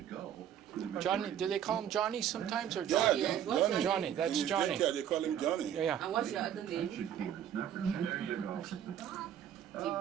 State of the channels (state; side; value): quieter; left; 9.9 dB